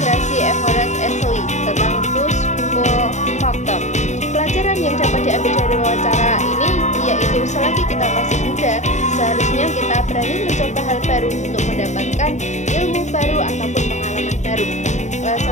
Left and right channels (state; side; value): late; right; 0.34 ms